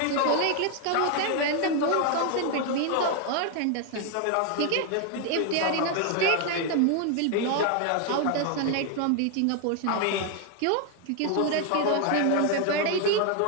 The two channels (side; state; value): both; different; correlation 0.01